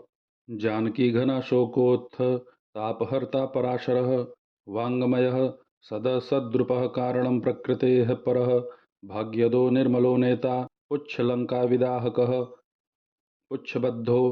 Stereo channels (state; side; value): identical; both; correlation 1.00